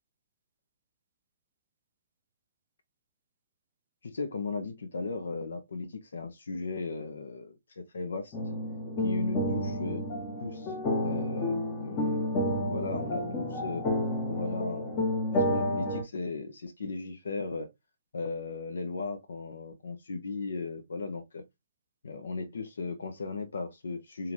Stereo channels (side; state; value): both; inverted; correlation -0.53